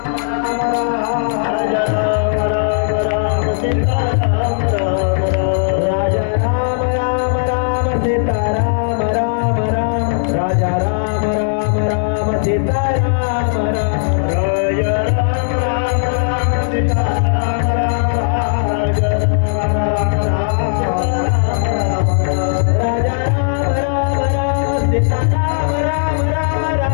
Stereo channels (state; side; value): silent; right; digital silence